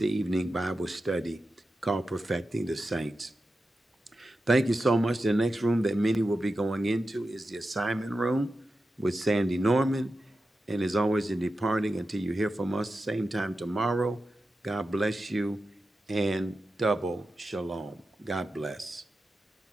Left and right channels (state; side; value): normal; both; correlation 0.91